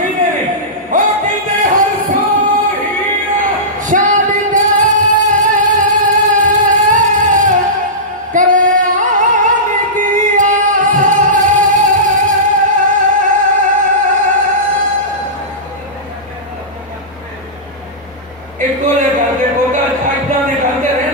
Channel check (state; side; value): normal; both; correlation -0.18